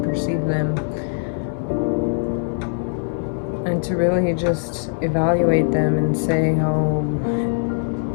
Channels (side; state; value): right; silent; 65 dB below the other